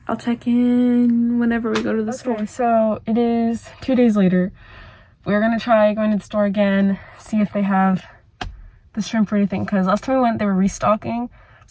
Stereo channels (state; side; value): identical; both; correlation 1.00